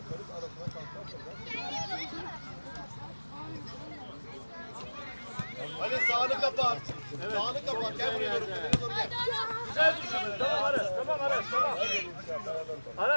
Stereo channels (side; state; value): both; inverted; correlation -1.00